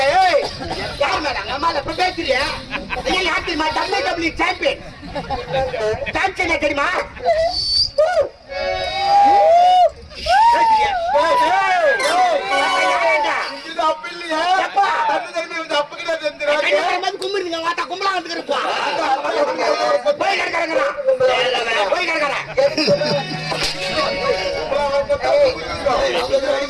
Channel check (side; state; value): both; identical; correlation 1.00